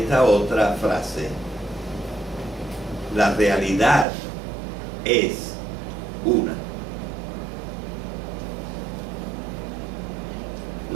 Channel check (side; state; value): left; drops out; at 4.0 s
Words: otra frase: la realidad es una.